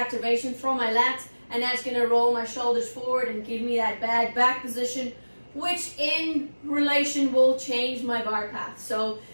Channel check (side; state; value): both; inverted; correlation -1.00